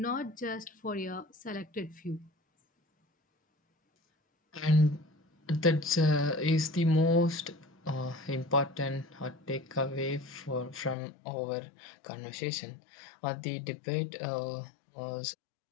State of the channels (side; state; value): right; drops out; at 11.0 s